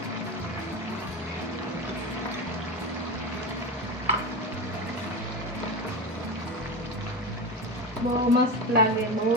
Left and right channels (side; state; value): both; normal; correlation 0.22